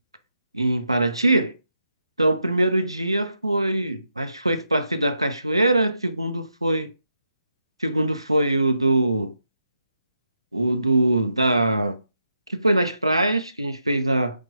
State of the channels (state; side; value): inverted; both; correlation -0.83